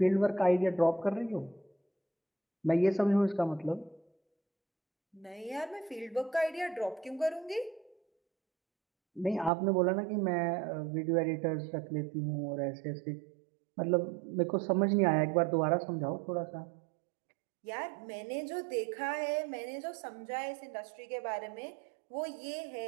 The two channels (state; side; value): drops out; left; at 9.5 s